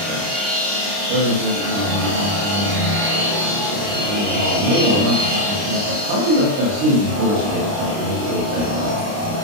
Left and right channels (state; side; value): late; left; 29 ms